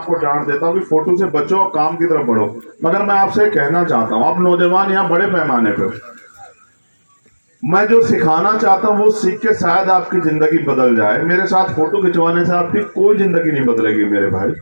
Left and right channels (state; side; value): inverted; both; correlation -1.00